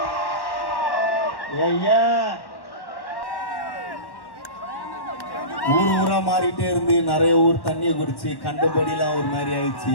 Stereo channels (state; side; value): late; right; 1.1 ms